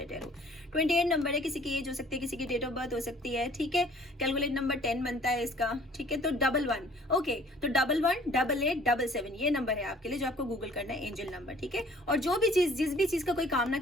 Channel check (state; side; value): normal; both; correlation 0.54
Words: टैरो। 28 नंबर है, किसी की एज हो सकती है, किसी की डेट ऑफ बर्थ हो सकती है, ठीक है। कैलकुलेट नंबर 10 बनता है इसका, ठीक है, तो 11, ओके, तो 11 88 77 ये नंबर है आपके लिए, जो आपको गूगल करना है, एंजल नंबर, ठीक है। और जो भी चीज, जिस भी चीज का कोई कामना